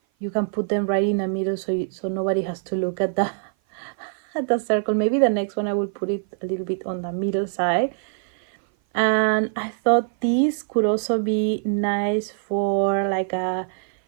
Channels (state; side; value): silent; left; 56 dB below the other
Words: you can put them right in the middle, so nobody has to look at the at the circle. Maybe the next one I will put it a little bit on the middle side. And I thought this could also be nice for like a